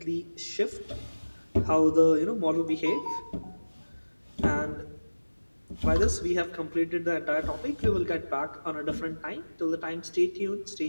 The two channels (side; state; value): both; inverted; correlation -1.00